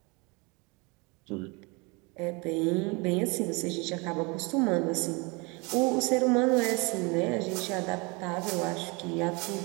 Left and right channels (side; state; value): left; quieter; 28.5 dB